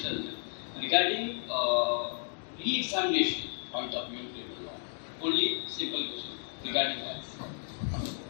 regarding re-examination point of view. Only simple question regarding that.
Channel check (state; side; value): silent; right; 56 dB below the other